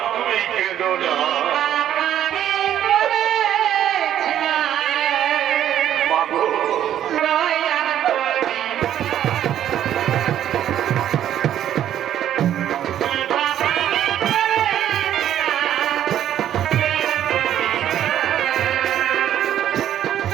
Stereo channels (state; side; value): quieter; left; 11.0 dB